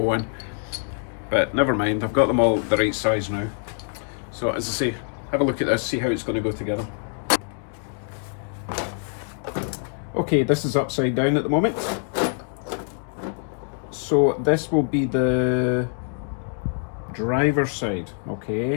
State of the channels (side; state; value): right; silent; 56 dB below the other